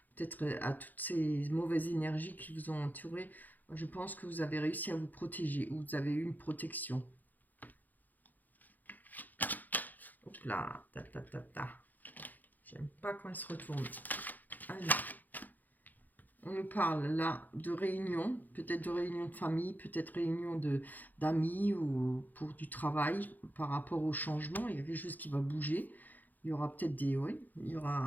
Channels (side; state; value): right; late; 0.084 ms